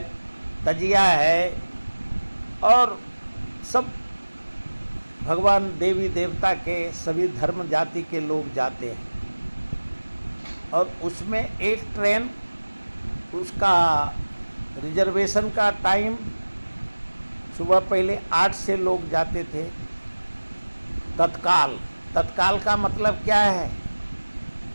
तजिया है और सब भगवान देवी देवता के सभी धर्म जाति के लोग जाते हैं। और उसमें एक ट्रेन, उसका रिजर्वेशन का टाइम सुबह पहले 8 से लोग जाते थे। तत्काल का मतलब क्या है?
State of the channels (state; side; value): inverted; both; correlation -1.00